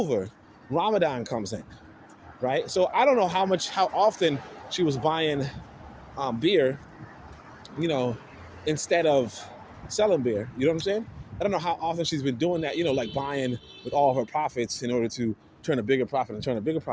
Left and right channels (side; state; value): both; identical; correlation 1.00